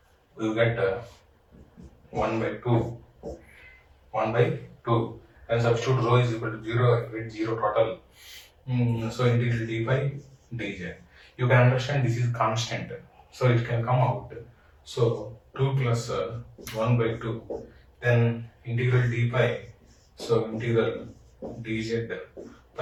you get 1 by 2, 1 by 2, and substitute rho is equal to 0, I get 0 total. So integral d pi dz. You can understand this is constant, so it can come out. So 2 plus 1 by 2, then integral d pi, so integral dz,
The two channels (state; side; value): identical; both; correlation 1.00